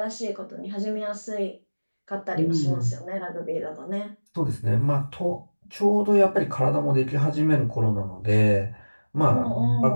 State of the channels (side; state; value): both; inverted; correlation -1.00